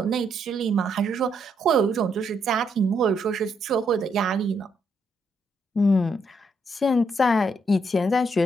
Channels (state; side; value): normal; both; correlation 0.76